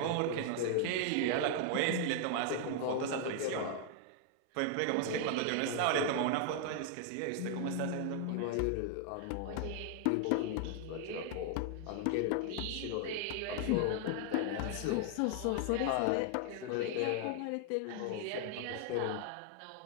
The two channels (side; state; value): both; different; correlation 0.00